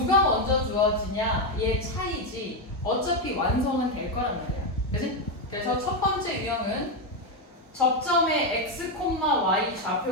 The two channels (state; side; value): normal; both; correlation 0.06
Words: 먼저 주어지냐의 차이지 어차피 완성은 될 거란 말이야. 그치? 그래서 첫 번째 유형은 접점의 x, y